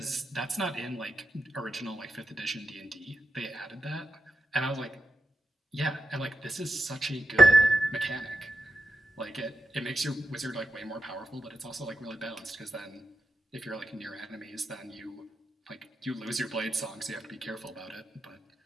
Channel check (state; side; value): normal; both; correlation 0.87